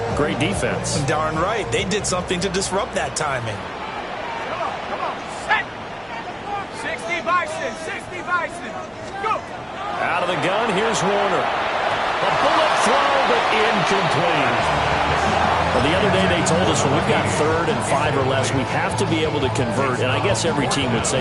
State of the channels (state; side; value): identical; both; correlation 1.00